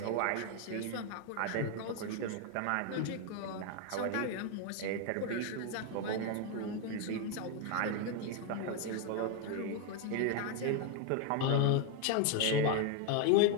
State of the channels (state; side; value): different; both; correlation 0.01